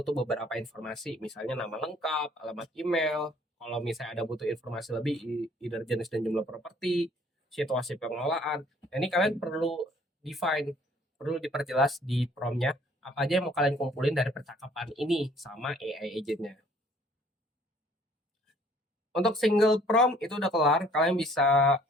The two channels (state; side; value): normal; both; correlation 0.58